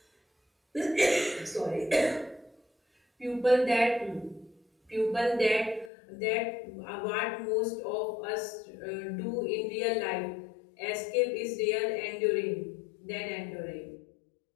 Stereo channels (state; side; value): drops out; right; at 5.9 s